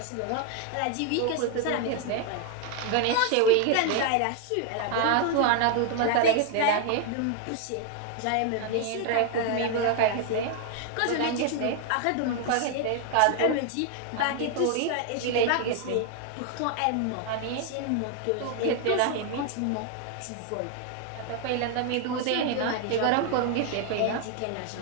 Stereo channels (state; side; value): different; both; correlation 0.00